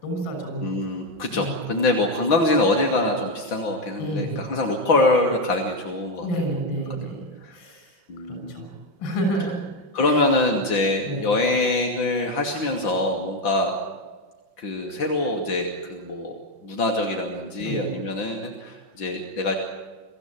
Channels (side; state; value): right; late; 6.0 ms